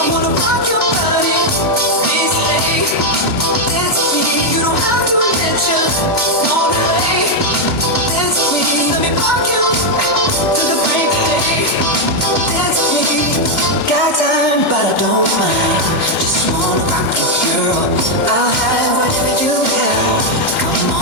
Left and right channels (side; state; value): right; late; 31 ms